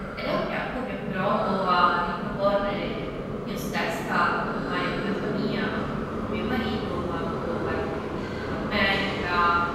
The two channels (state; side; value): identical; both; correlation 1.00